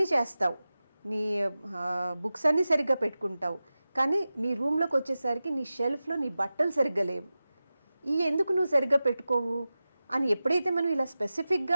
చేస్తావు, నీ బుక్స్ అన్నీ సరిగ్గా పెట్టుకుంటావు, కానీ నీ రూమ్లోకి వచ్చేసరికి నీ షెల్ఫ్లో నీ బట్టలు సరిగ్గా లేవు. ఈ ఎందుకు నువ్వు సరిగ్గా పెట్టుకోవు అని ఎప్పుడైతే మనం ఇలా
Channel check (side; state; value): both; inverted; correlation -0.95